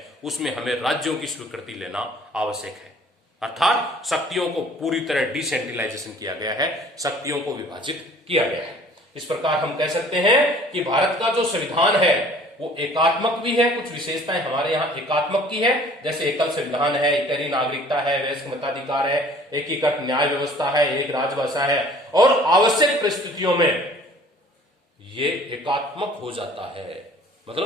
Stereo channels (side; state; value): both; normal; correlation 0.52